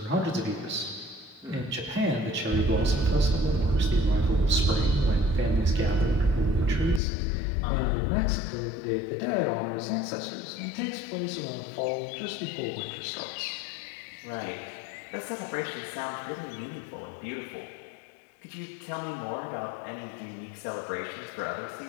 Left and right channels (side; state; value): right; drops out; at 7.0 s